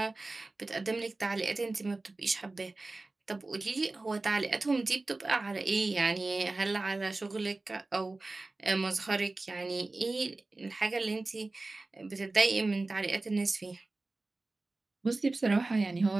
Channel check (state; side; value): quieter; left; 3.2 dB